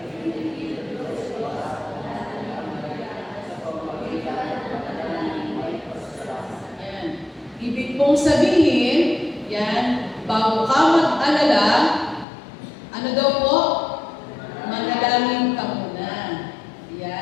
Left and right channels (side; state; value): right; drops out; at 12.2 s